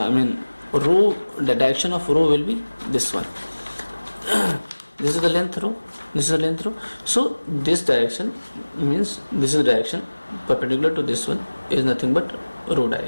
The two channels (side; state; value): both; inverted; correlation -1.00